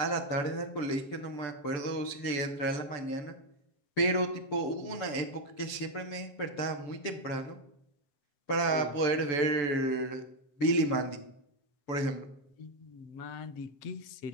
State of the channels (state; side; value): late; right; 6.9 ms